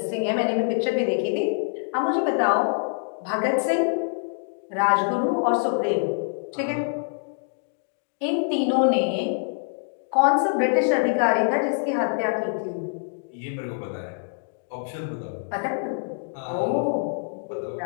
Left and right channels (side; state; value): right; silent; digital silence